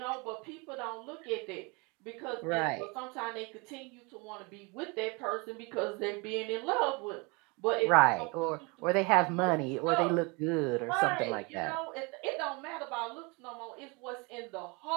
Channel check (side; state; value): left; quieter; 28.8 dB